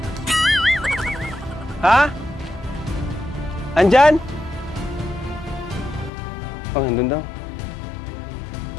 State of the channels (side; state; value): right; drops out; at 6.1 s